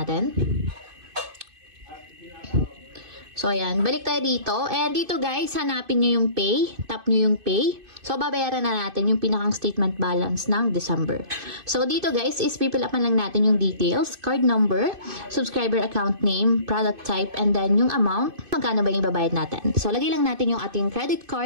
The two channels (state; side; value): late; left; 2.5 ms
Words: So, ayan. Balik tayo dito. And dito guys, hanapin nyo yung pay. Tap nyo yung pay. So, babayaran na natin yung pinakang statement balance ng December. So, dito guys, is pipilapan lang natin yung details, card number, subscriber account name, product type, and then yung amount, magkano ba yung babayad natin. So, lagay lang natin yung ating credit